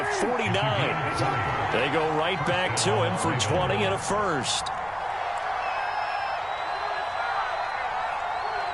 49. They go right back to him for 20 and a first.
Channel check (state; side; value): identical; both; correlation 1.00